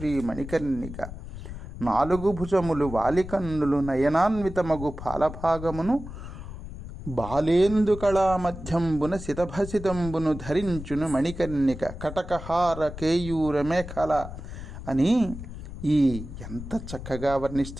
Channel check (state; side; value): noise; left; rumble, 11 dB below the sound